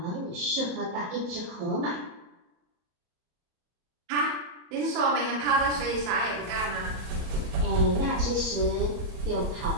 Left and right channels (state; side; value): late; left; 34 ms